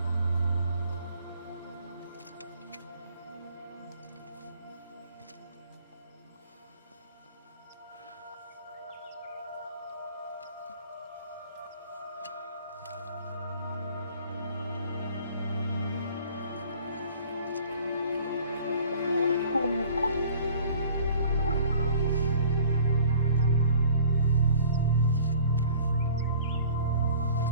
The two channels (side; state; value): both; inverted; correlation -0.50